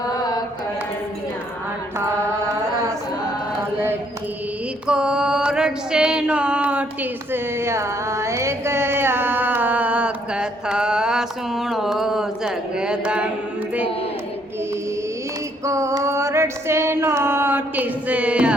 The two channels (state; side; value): normal; both; correlation 0.68